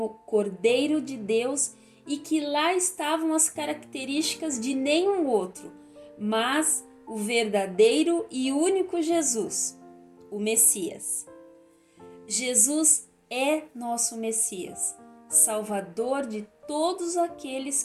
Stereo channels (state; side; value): identical; both; correlation 1.00